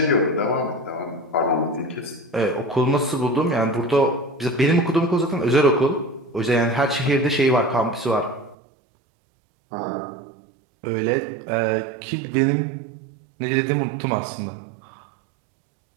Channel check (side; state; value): left; drops out; at 8.6 s